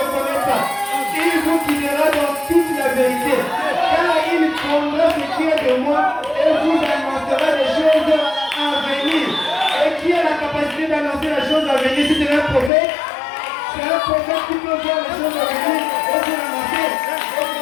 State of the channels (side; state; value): right; drops out; at 12.7 s